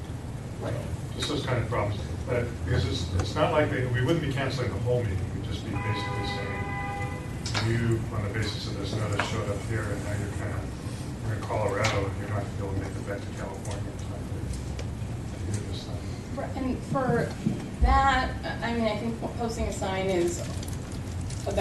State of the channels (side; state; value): both; identical; correlation 1.00